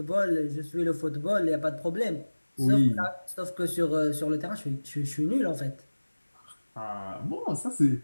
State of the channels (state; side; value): inverted; both; correlation -1.00